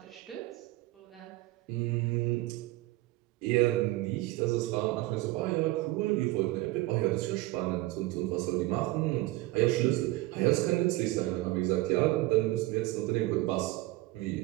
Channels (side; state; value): left; quieter; 18.7 dB